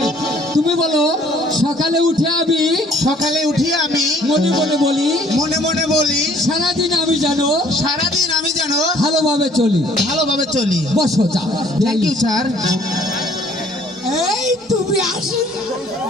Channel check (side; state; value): both; normal; correlation 0.59